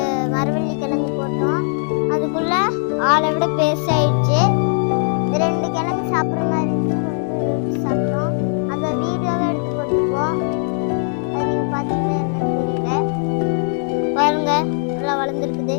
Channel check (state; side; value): silent; right; 66 dB below the other